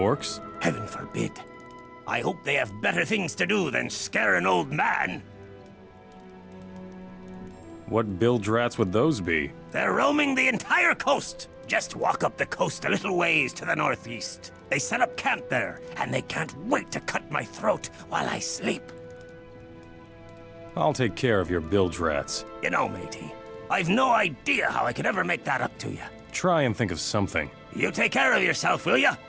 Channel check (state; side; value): identical; both; correlation 1.00